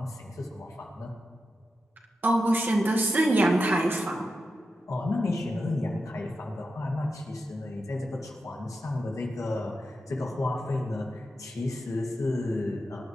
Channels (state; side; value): normal; both; correlation 0.89